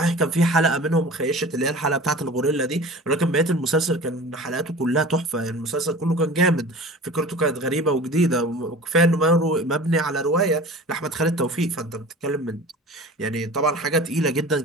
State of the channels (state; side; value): normal; both; correlation 0.39